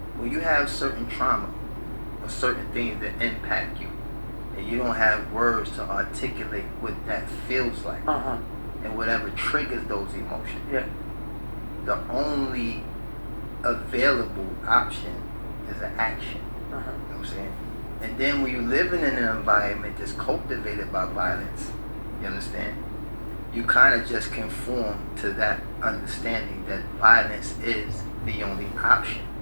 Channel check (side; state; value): both; inverted; correlation -1.00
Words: when you have certain trauma or certain things that impact you, and you don't have words to articulate what that feels like, and whatever triggers those emotions, Yeah. the only available option is an action. You know what I'm saying? And then when you live in an environment that's cultivated by violence, you understand? You kind of just conform to that understanding that violence is the only option,